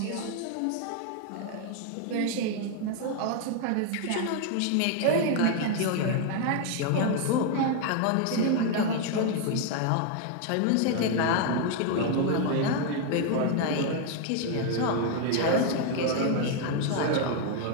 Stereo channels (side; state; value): both; different; correlation 0.00